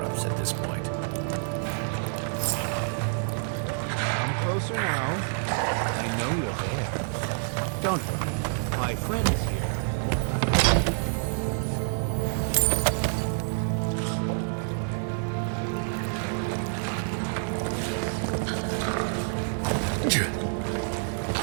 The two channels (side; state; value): left; silent; 59 dB below the other